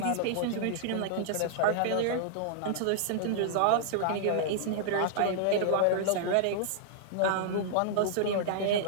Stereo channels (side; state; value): both; different; correlation -0.01